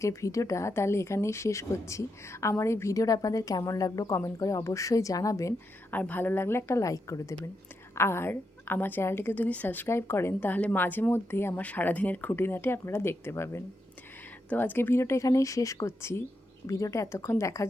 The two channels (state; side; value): normal; both; correlation 0.84